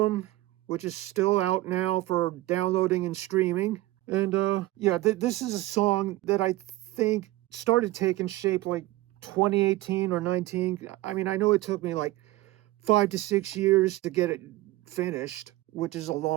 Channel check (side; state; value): left; quieter; 18.1 dB